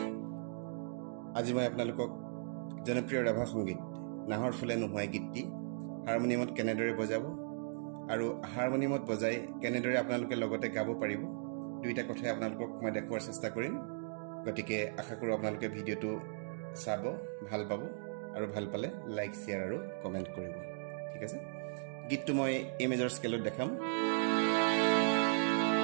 আজি মই আপোনালোকক জনপ্ৰিয় ৰাভা সংগীত নাহৰ ফুলে নুহুৱাই গীতটি হাৰমনিয়ামত কেনেদৰে বজাব আৰু হাৰমনিয়ামত বজাই কেনেদৰে আপোনালোকে লগতে গাব পাৰিব দুইটা কথাই আপোনালোকক মই দেখুৱাৰ চেষ্টা কৰিম। গতিকে আশা কৰোঁ আপোনালোকে ভিডিঅ'টো চাব, ভাল পাব আৰু ভাল পালে লাইক, শ্বেয়াৰ আৰু কমেণ্ট কৰিব। ঠিক আছে, গীতটো মই এ মেজৰ স্কেলত দেখাম।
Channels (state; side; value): silent; left; digital silence